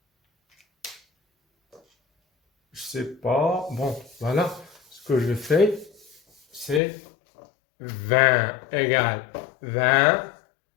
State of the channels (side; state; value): right; drops out; at 6.8 s